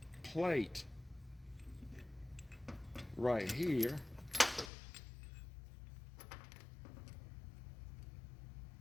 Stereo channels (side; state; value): right; drops out; at 4.7 s